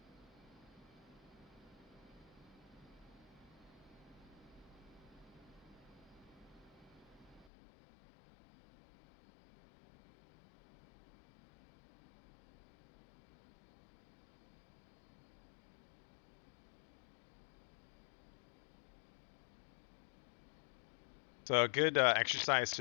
So a good exercise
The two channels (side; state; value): right; drops out; at 7.5 s